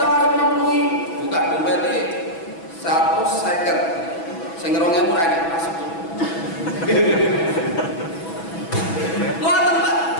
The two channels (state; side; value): late; right; 6.1 ms